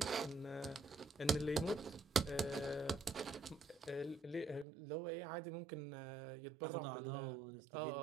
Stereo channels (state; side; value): drops out; left; at 4.7 s